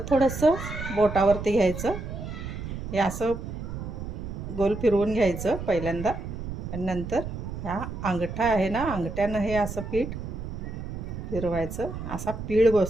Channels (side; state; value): right; noise; rumble, 7 dB below the sound